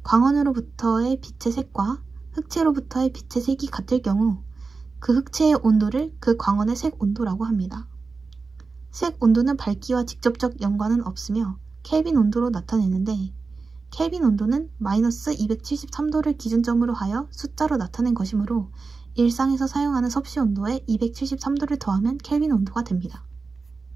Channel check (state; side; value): quieter; left; 4.3 dB